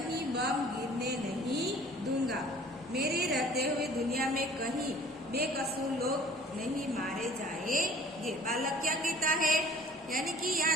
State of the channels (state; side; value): normal; both; correlation 0.50